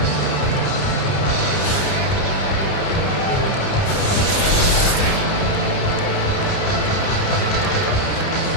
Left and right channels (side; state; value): right; late; 30 ms